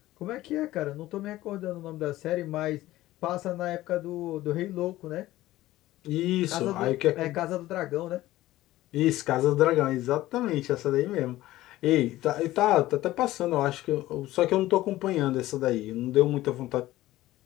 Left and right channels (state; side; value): quieter; right; 16.1 dB